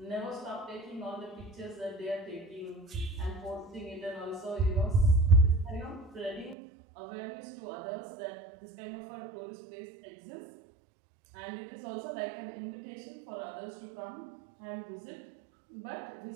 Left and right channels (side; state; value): left; drops out; at 6.6 s